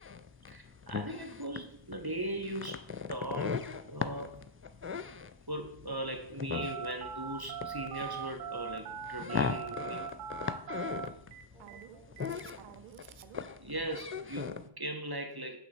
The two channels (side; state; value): left; late; 1.1 ms